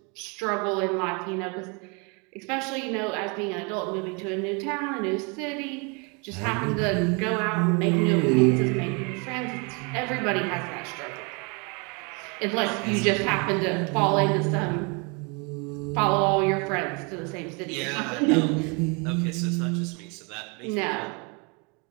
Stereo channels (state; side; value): quieter; left; 32.1 dB